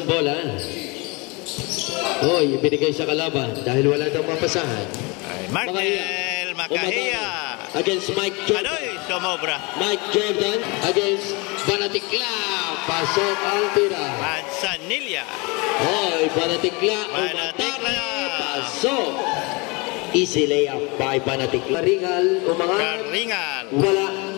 bola. Hoy, ibinigay sa kalaban dahil wala daw mapasahan. Markel Makahiya. Against Mike Jordan. Adoy, sumobra. Mike Jordan against Banatikla. Pasok ang tira. Manzanilla. Hoy, Banatikla. Banatikla. Pasok. Easy layup by Banatikla. Karingal umangat. Karingal. Wala.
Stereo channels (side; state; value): right; quieter; 27.8 dB